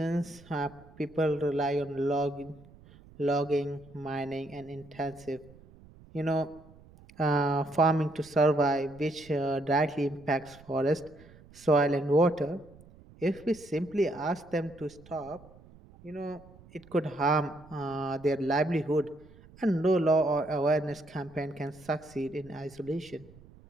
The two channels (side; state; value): right; noise; rumble, 23 dB below the sound